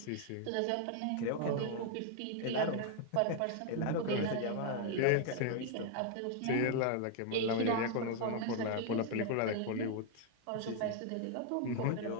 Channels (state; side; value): different; both; correlation 0.00